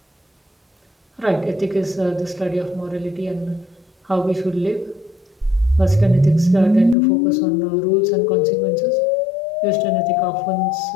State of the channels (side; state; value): right; drops out; at 7.0 s